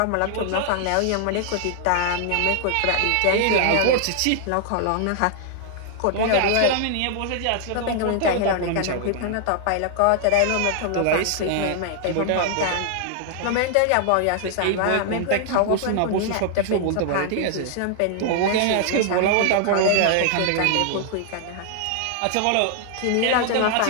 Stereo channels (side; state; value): both; different; correlation 0.00